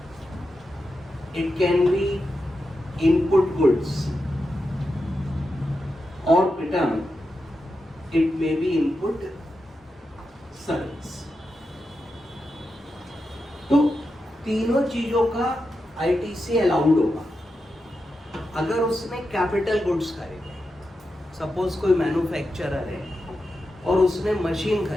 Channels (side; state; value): both; normal; correlation 0.88